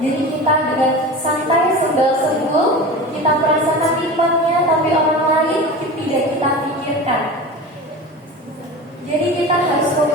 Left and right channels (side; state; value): both; normal; correlation 0.32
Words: kita dengan santai sembal-sembul, kita merasakan nikmatnya, tapi orang lain tidak kita pikirkan. Jadi kita harus